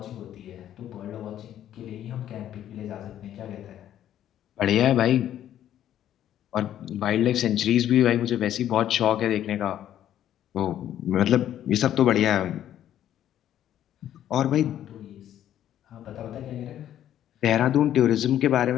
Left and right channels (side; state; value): right; quieter; 11.3 dB